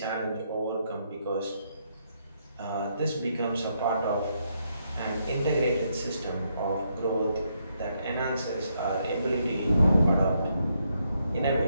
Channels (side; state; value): both; inverted; correlation -0.77